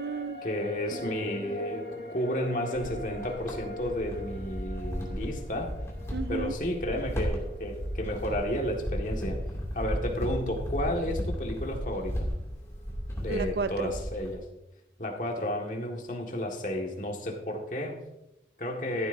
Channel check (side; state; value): both; normal; correlation 0.52